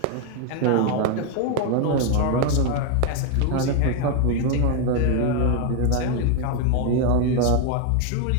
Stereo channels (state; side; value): different; both; correlation 0.01